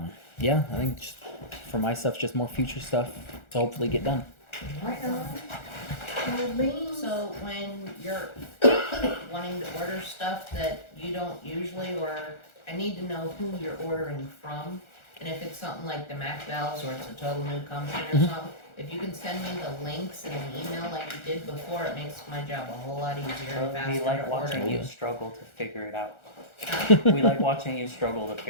Yeah, I think just for my stuff, just more future stuff to hopefully get done. So when you're wanting to order stuff that you don't usually, or I need to know who you're ordering from, and if it's something like the Mac valves or it's a total new company or something, if you can send me the links in an email like you did before, it makes my job a whole lot easier and faster We like to watching order. you struggle to figure it out. We like watching you struggle to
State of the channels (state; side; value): late; right; 1.4 ms